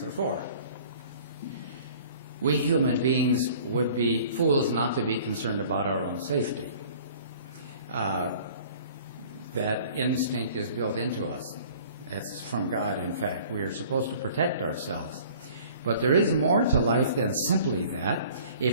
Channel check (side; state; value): both; inverted; correlation -0.50